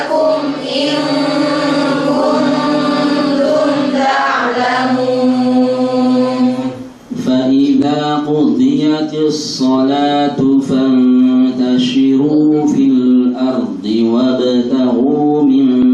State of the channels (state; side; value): identical; both; correlation 1.00